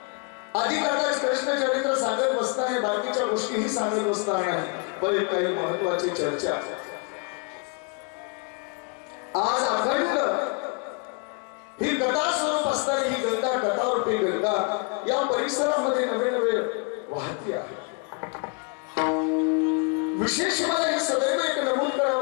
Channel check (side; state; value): right; quieter; 34.7 dB